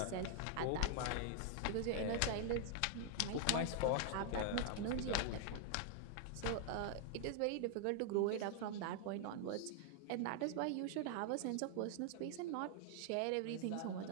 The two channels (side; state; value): both; different; correlation 0.00